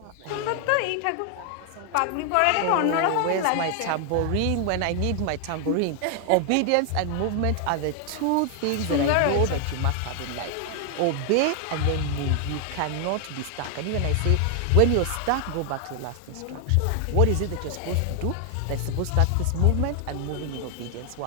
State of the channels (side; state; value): both; different; correlation 0.00